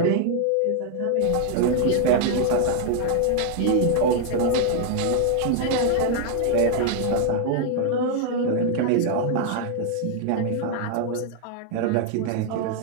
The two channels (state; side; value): different; both; correlation 0.00